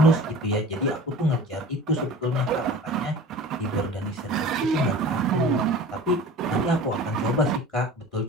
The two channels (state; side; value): normal; both; correlation 0.40